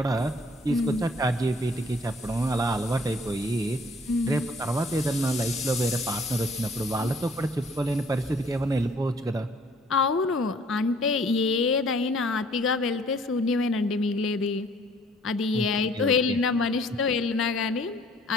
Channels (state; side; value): normal; both; correlation 0.59